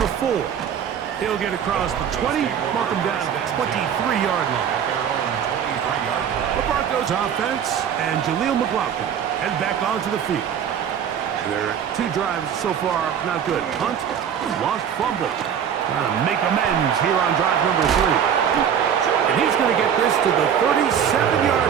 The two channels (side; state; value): left; quieter; 8.5 dB